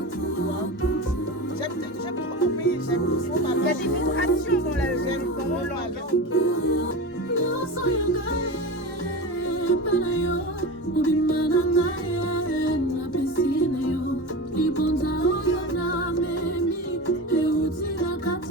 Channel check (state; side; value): normal; both; correlation 0.26